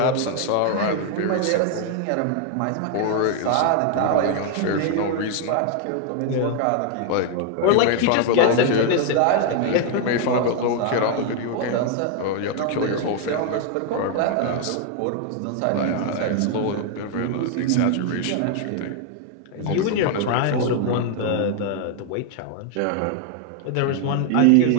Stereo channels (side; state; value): both; different; correlation 0.00